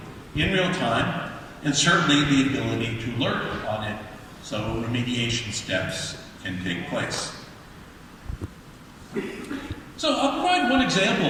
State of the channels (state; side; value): identical; both; correlation 1.00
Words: in real time, and certainly the ability to alert on it so remediation steps can take place. So I'll provide one example